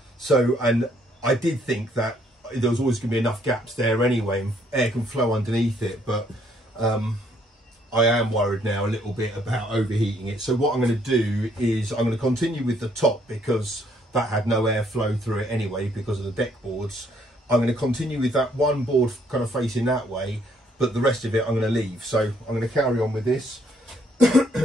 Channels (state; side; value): normal; both; correlation 0.68